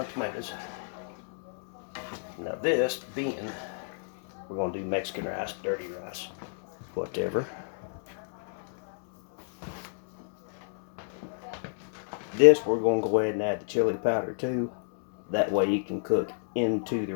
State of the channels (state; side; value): silent; right; 58 dB below the other